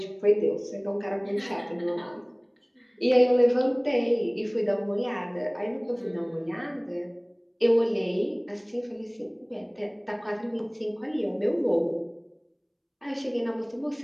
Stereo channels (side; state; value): both; identical; correlation 1.00